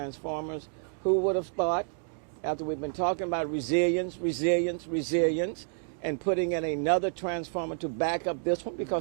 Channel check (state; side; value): silent; left; digital silence